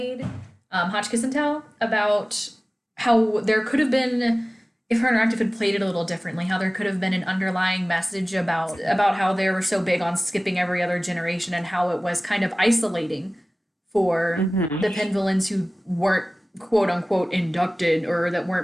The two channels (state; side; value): normal; both; correlation 0.98